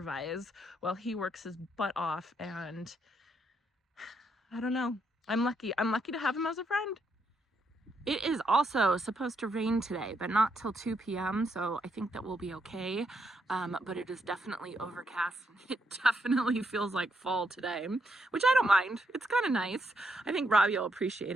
while he works his butt off, and I don't know. I'm lucky. I'm lucky to have him as a friend. It is also supposed to rain today, but not till 2 p.m. So I think that we'll be okay. But it is definitely overcast. It definitely feels like fall today, which I don't mind. It's kind of nice. I think Robbie will appreciate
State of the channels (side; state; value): both; normal; correlation 0.77